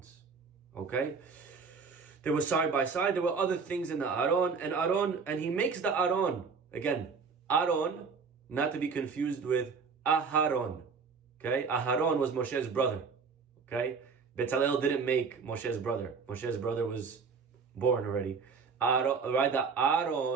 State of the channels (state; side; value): quieter; left; 5.2 dB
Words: Okay? They were side by side. There were other things in the Aron, and he makes the Aron. Again, Aron, not to be confused with Aharon. Okay? Aharon was Moshe's brother. Okay? Betzalel didn't make Moshe's brother. Moshe's brother was born already. Right, the